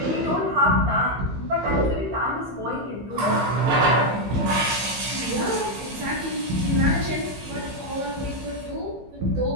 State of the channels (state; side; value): late; left; 15 ms